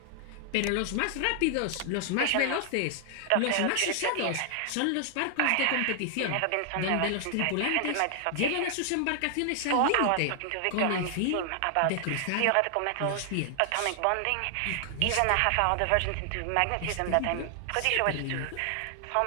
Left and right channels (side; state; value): both; different; correlation 0.00